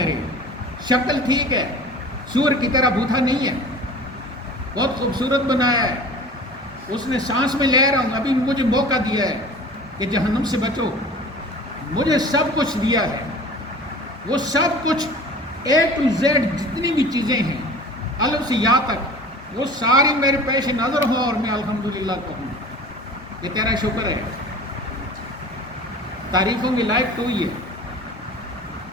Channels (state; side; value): normal; both; correlation 0.41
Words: شکل ٹھیک ہے، سور کی طرح بوتھا نہیں ہے، بہت خوبصورت بنایا ہے، اس نے سانس میں لے رہا ہوں، ابھی مجھے موقع دیا ہے کہ جہنم سے بچو، مجھے سب کچھ دیا ہے، وہ سب کچھ A to Z جتنی بھی چیزیں ہیں الف سے یا تک وہ ساری میرے پیش نظر ہوں اور میں الحمدللہ کہوں، یہ تیرا شکر ہے۔ تعریفوں کی لائق تو ہی ہے۔